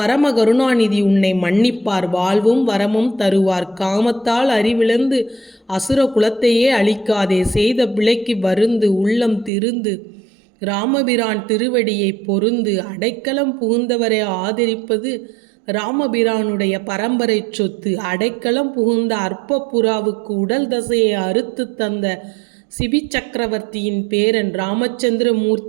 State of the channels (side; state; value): left; drops out; at 9.5 s